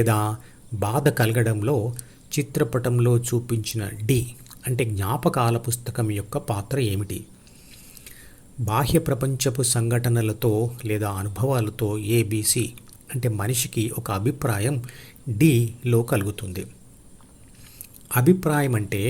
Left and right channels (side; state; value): both; identical; correlation 1.00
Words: బాధ కలగడంలో చిత్రపటంలో చూపించిన డి అంటే జ్ఞాపకాల పుస్తకం యొక్క పాత్ర ఏమిటి? బాహ్య ప్రపంచపు సంఘటనలతో లేదా అనుభవాలతో ఏబిసి అంటే మనిషికి ఒక అభిప్రాయం డిలో కలుగుతుంది. అభిప్రాయం అంటే